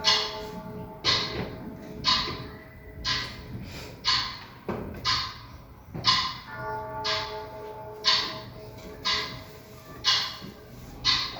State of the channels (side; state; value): both; identical; correlation 1.00